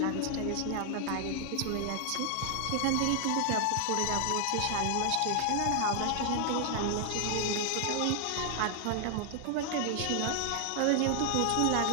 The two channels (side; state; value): both; different; correlation 0.00